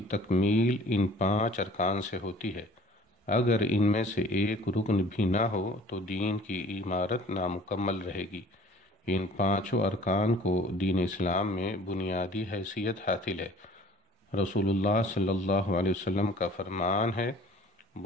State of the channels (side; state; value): both; normal; correlation 0.50